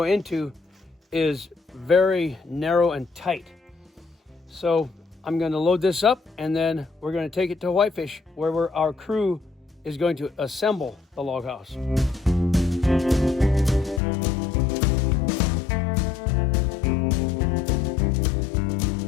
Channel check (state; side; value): drops out; right; at 14.0 s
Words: into is very narrow and tight. So I'm going to load this up, and then we're going to take it to Whitefish, where our crew is going to assemble the log house.